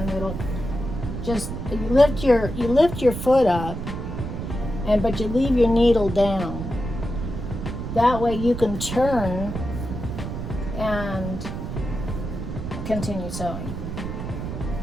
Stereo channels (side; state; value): right; noise; rumble, 6 dB below the sound